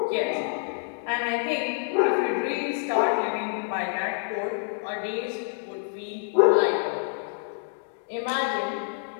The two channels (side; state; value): right; silent; 60 dB below the other